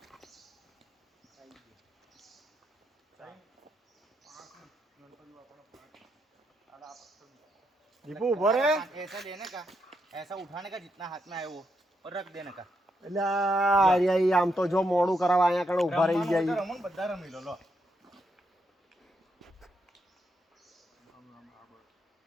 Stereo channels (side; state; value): both; normal; correlation 0.80